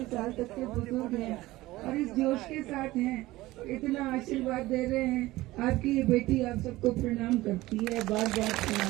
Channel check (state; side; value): quieter; left; 18.1 dB